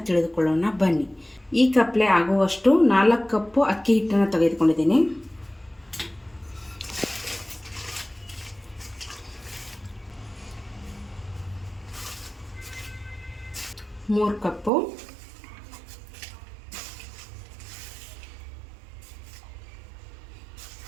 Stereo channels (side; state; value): left; drops out; at 14.7 s